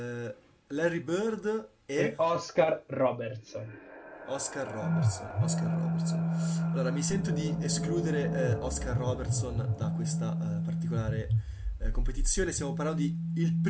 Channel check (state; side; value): identical; both; correlation 1.00